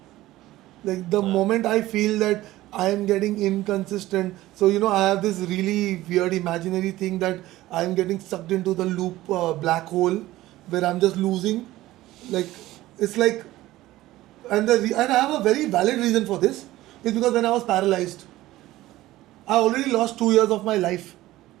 Like the moment I feel that I am getting inconsistent, so I have this really weird imaginary thing that I am getting sucked into the loop black hole where I'm just losing. Like it's like, and I have a very valid reason for this. It's because when I was paralyzed, I already lost 2 years of my life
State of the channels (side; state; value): left; quieter; 16.4 dB